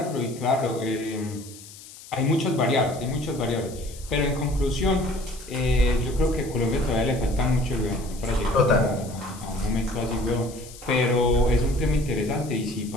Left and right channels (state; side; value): noise; left; hiss, 18 dB below the sound